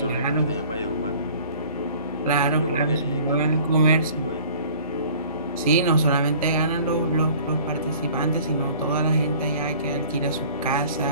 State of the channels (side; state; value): both; inverted; correlation -0.49